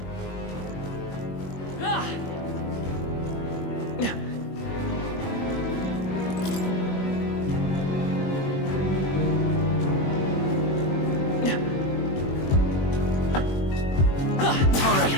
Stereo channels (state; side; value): late; right; 21 ms